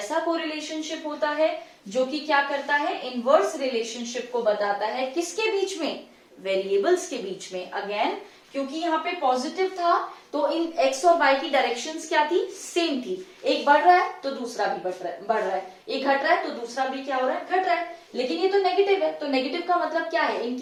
कोरिलेशनशिप होता है जो कि क्या करता है? इनवर्स रिलेशनशिप को बताता है. किसके बीच में? वेरिएबल्स के बीच में। अगेन क्योंकि यहाँ पे पॉजिटिव था तो इन एक्स और वाई की डायरेक्शंस क्या थी, सेम थी। एक बढ़ रहा है तो दूसरा भी बढ़ रहा है, एक घट रहा है तो दूसरा भी क्या हो रहा है, घट रहा है। लेकिन ये तो नेगेटिव है, तो नेगेटिव का मतलब क्या है,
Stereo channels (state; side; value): identical; both; correlation 1.00